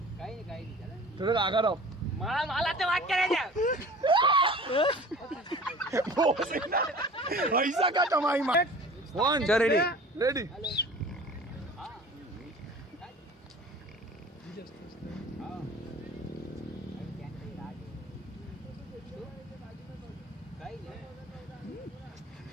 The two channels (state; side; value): normal; both; correlation 0.43